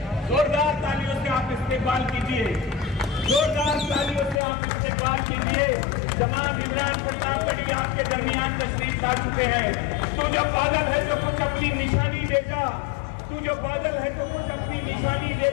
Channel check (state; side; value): drops out; right; at 4.4 s